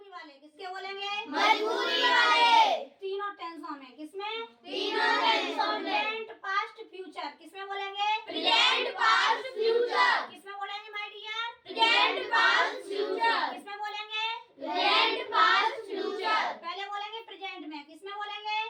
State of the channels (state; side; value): identical; both; correlation 1.00